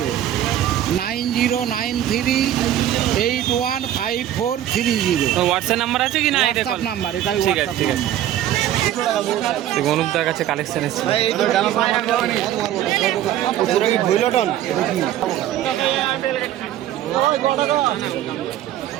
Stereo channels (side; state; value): left; quieter; 12.0 dB